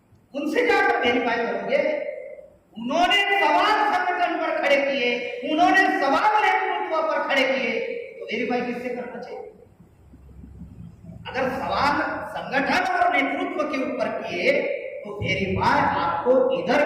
उनसे जाकर वेरीफाई करोगे। उन्होंने सवाल संगठन पर खड़े किए, उन्होंने सवाल नेतृत्व पर खड़े किए, तो वेरीफाई किससे करना चाहिए? अगर सवाल संगठन और नेतृत्व के ऊपर किए तो वेरीफाई आपको इधर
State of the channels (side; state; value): both; identical; correlation 1.00